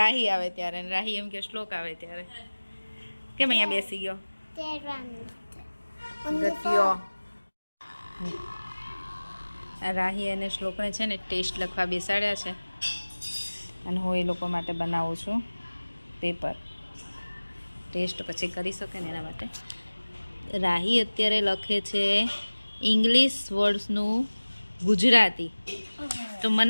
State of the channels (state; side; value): inverted; both; correlation -1.00